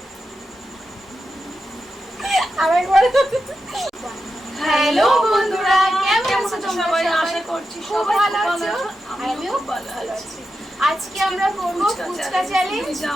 আরেকবার। হ্যালো বন্ধুরা, কেমন আছো তোমরা সবাই? আশা করছি খুব ভালো আছো, আমিও ভালো আছি। আজকে আমরা করব ফুচকা চ্যালেঞ্জ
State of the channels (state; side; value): normal; both; correlation 0.89